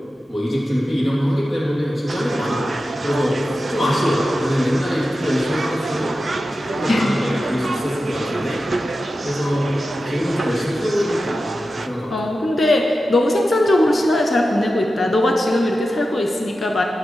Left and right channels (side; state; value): both; normal; correlation 0.92